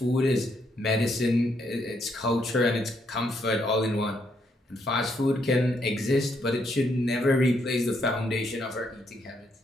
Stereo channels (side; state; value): both; normal; correlation 0.75